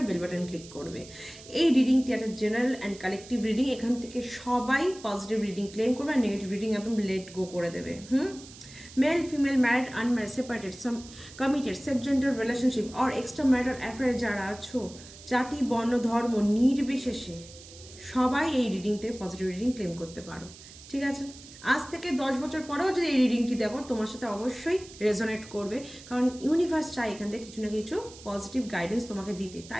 বেল বাটন ক্লিক করবে। এই রিডিংটি একটা জেনারেল অ্যান্ড কালেকটিভ রিডিং, এখান থেকে সবাই পজিটিভ রিডিং ক্লেম করবে আর নেগেটিভ রিডিং একদম লেট গো করে দেবে। Male female married unmarried separated some committed safe gender relationship আর এক্সট্রা ম্যারিটাল অ্যাফেয়ারে যারা আছো, জাতি বর্ণ ধর্ম নির্বিশেষে সবাই এই রিডিং থেকে পজিটিভ রিডিং ক্লেম করতে পারো, ঠিক আছে? আজ থেকে 10 বছর পরেও যদি এই রিডিংটি দেখো, তোমার সাথে অবশ্যই রেজোনেট করবে, কারণ ইউনিভার্স চাই এখান থেকে কিছু না কিছু পজিটিভ গাইডেন্স তোমাকে দিতে,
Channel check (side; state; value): right; noise; hiss, 18 dB below the sound